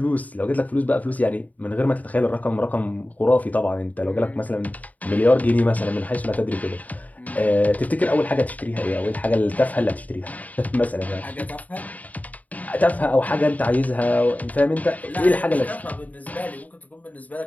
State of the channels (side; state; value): right; late; 0.074 ms